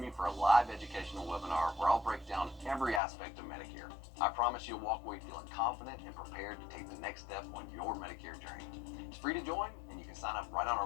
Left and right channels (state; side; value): drops out; right; at 3.0 s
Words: me for a live educational webinar where I'll break down every aspect of Medicare. I promise you'll walk away feeling confident and prepared to take the next step on your Medicare journey. It's free to join, and you can sign up right on our